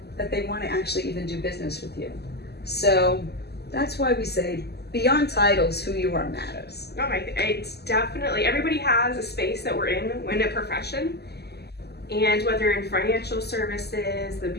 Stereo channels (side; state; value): right; late; 0.47 ms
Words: that they want to actually even do business with you? So that's why we say, beyond titles, who you are matters. Oh my, it's definitely, everybody has a space that we're in a profession. And whether in financial services, the